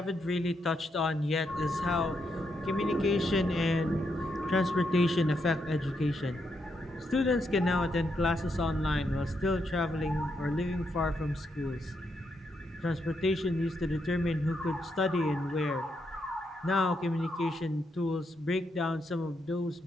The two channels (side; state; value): both; normal; correlation 0.80